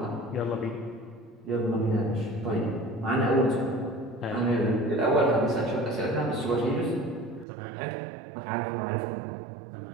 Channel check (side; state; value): left; drops out; at 7.5 s